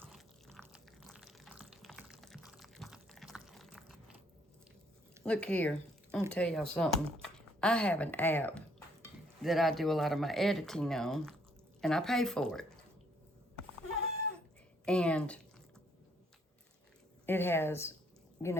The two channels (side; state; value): both; normal; correlation 0.67